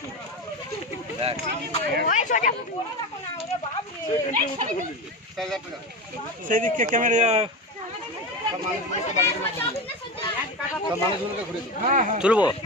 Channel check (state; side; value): normal; both; correlation 0.22